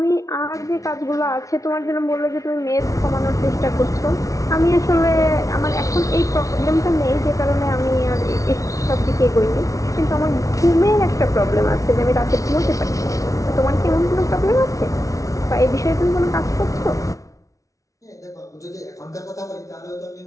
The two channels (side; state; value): right; late; 0.16 ms